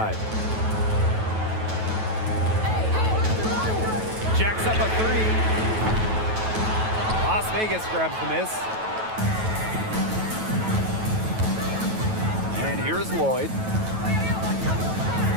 Jacks up a 3. Las Vegas grabs the miss. And here's Lloyd.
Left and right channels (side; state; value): left; late; 9.2 ms